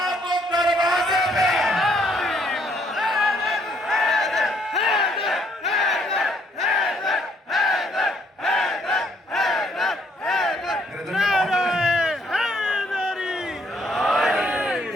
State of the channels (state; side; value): normal; both; correlation 0.68